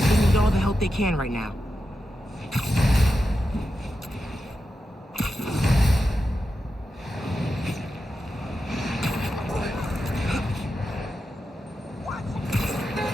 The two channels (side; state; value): both; normal; correlation 0.89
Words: need all the help they can right now.